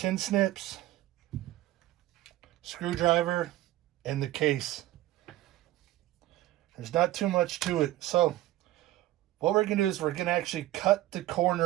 snips, screwdriver, and the case. There's not too much to it. So, what we're going to do is we're going to actually cut the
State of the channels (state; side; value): quieter; left; 15.6 dB